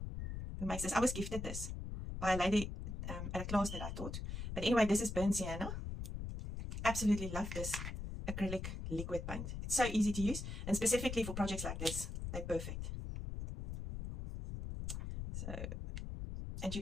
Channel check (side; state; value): left; noise; rumble, 5 dB below the sound